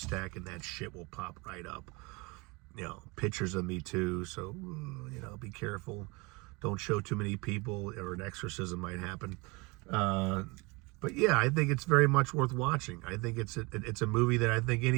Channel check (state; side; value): quieter; left; 26.5 dB